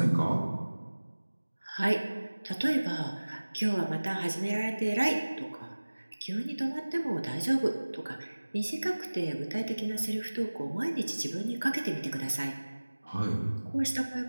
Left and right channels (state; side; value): inverted; both; correlation -1.00